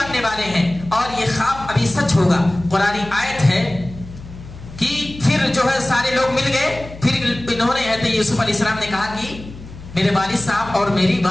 والے ہیں. اور یہ خواب ابھی سچ ہوگا. قرآنی آیت ہے کہ پھر جو ہے سارے لوگ مل گئے. پھر انہوں نے حضرت یوسف علیہ السلام نے کہا کہ میرے والد صاحب اور میری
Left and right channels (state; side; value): noise; left; hum, 15 dB below the sound